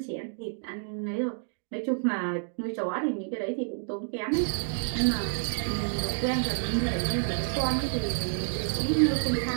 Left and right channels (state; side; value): silent; left; digital silence